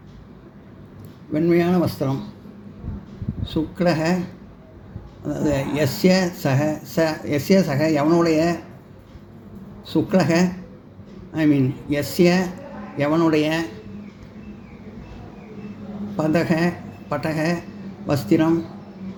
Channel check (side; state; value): both; identical; correlation 1.00